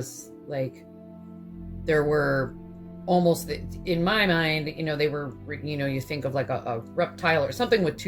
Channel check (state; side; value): identical; both; correlation 1.00